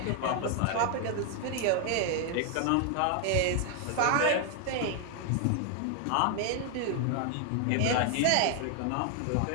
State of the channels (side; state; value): both; different; correlation 0.00